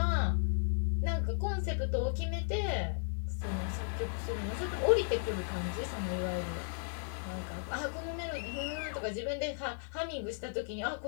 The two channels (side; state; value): right; silent; digital silence